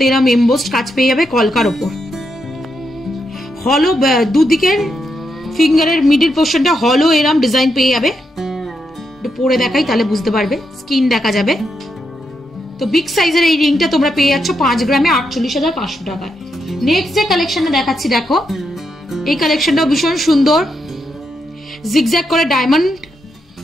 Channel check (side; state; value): both; normal; correlation 0.82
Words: এরা এমবোসড কাজ পেয়ে যাবে কলকার ওপর। হলো দুদিকের ফিঙ্গারের মিডল পোর্শনটা হলো এরম ডিজাইন পেয়ে যাবে। পরে দেখাই তাহলে বুঝতে পারবে, স্কিন দেখা যাবে। তো বিগ সাইজের এই রিংটা তোমরা পেয়ে যাচ্ছ 5 গ্রামে 48,500 টাকায়। নেক্সট যে কালেকশনটা দেখাচ্ছি দেখো, এই কালেকশনটাও ভীষণ সুন্দর। জিগজ্যাগ করে ডায়মন্ড